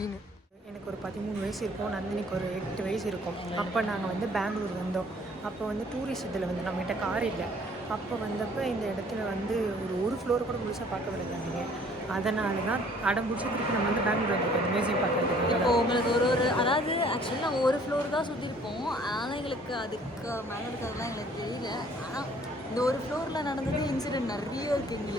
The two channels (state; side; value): normal; both; correlation 0.57